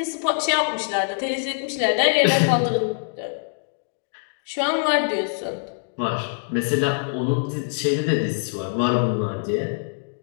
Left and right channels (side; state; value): right; silent; digital silence